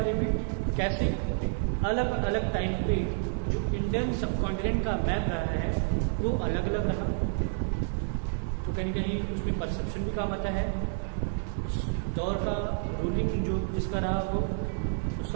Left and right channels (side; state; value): left; silent; 58 dB below the other